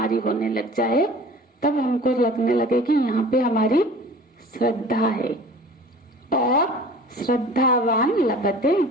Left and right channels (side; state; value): both; normal; correlation 0.43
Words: होने लग जाए तब हमको लगने लगे कि यहाँ पे हमारी श्रद्धा है। और श्रद्धावान लभते